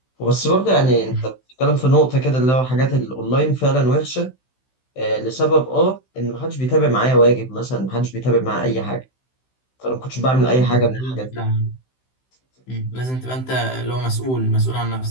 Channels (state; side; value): late; right; 16 ms